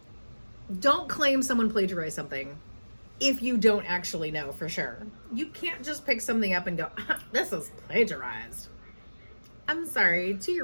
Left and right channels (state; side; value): inverted; both; correlation -1.00